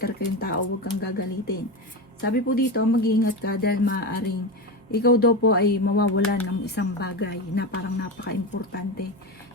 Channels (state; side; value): normal; both; correlation 0.19